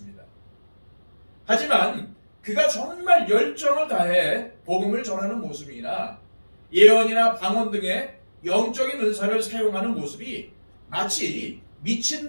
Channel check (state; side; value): inverted; both; correlation -1.00